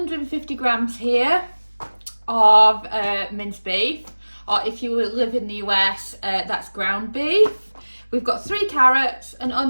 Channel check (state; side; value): inverted; both; correlation -1.00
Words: grams here of minced beef, or if you live in the US, that's ground beef. We've got 3 carrots, an